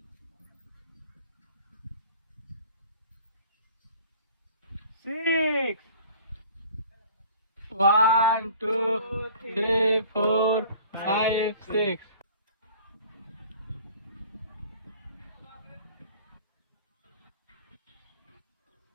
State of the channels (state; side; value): inverted; both; correlation -0.48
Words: Six. 1, 2, 3, 4, 5, 6.